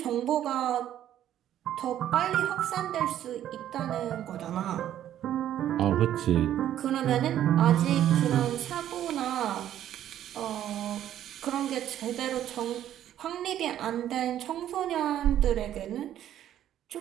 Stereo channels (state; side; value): quieter; left; 11.4 dB